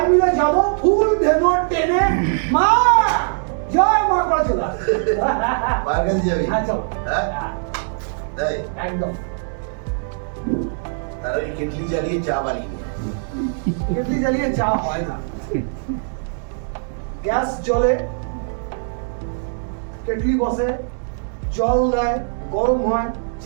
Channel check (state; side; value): silent; left; 65 dB below the other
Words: মিলে যাবো, ফুল ধেনো টেনে, মা জয় মা করে চলে আসবে। মায়ের কাছে যাবি? হ্যাঁ চলো। হ্যাঁ? হ্যাঁ, তাই? একদম। তাহলে ওই কেটলি জ্বালিয়ে চা বানিয়ে নে। কেটলি জ্বালিয়ে চা হয় না, গ্যাস জ্বলে, কেটলি বসে, জল দেয়, গরম হয়,